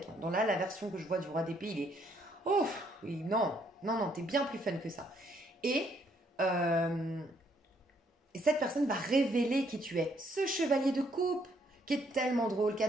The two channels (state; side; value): normal; both; correlation 0.69